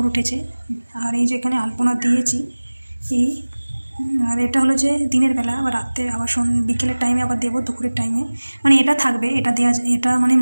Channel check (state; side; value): inverted; both; correlation -1.00